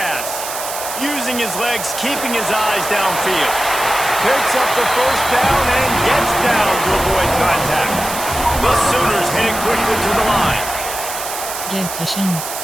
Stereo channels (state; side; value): noise; right; hiss, 7 dB below the sound